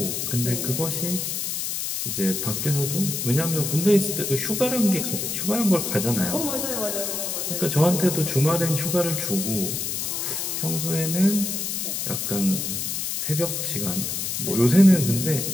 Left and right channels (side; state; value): left; noise; hiss, 2 dB below the sound